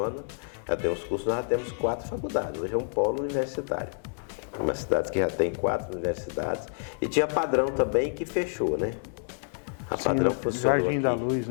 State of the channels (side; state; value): right; silent; 59 dB below the other